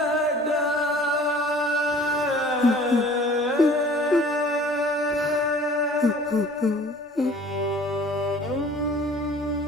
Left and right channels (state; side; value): normal; both; correlation 0.49